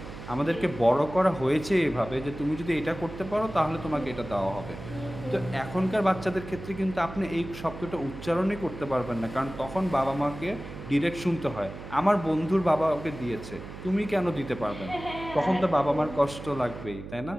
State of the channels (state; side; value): noise; right; hum, 12 dB below the sound